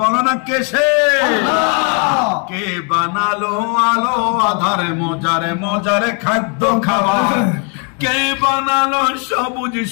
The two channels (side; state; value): right; quieter; 36.0 dB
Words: না কে সে? কে বানালো আলো আধারে মজারে মজারে খাদ্য খাবার? কে বানালো সবুজ